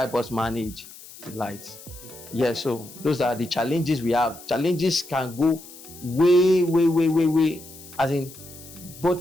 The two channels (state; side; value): noise; left; hiss, 18 dB below the sound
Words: us manage the lights. Yeah, so those are the challenges we have. Challenges can go way, as in